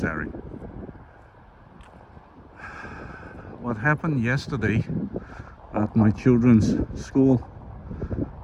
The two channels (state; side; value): identical; both; correlation 1.00